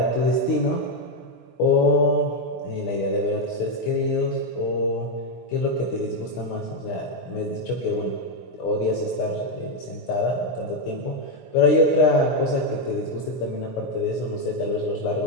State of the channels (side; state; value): right; late; 16 ms